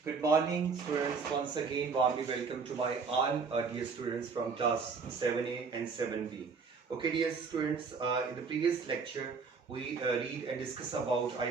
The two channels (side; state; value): left; quieter; 5.1 dB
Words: Good morning, students. Once again, warmly welcome to my all dear students from class 7A and 7B. Okay, dear students, in the previous lecture, we read and discuss about, I